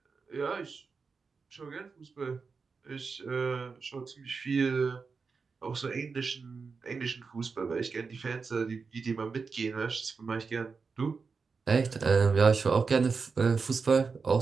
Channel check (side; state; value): left; quieter; 4.9 dB